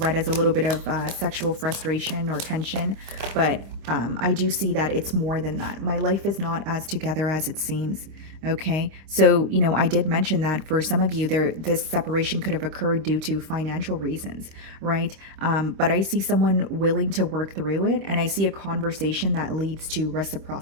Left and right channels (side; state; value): left; late; 26 ms